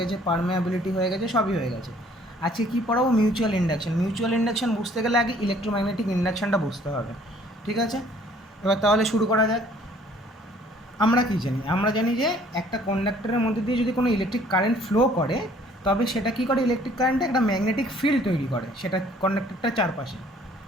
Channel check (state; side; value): normal; both; correlation 0.58